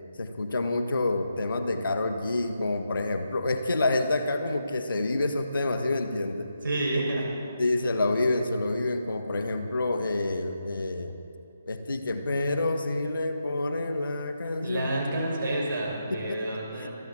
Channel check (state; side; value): inverted; both; correlation -0.85